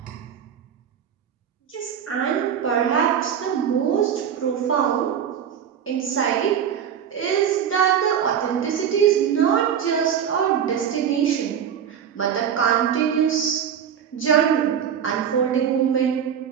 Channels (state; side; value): quieter; left; 8.4 dB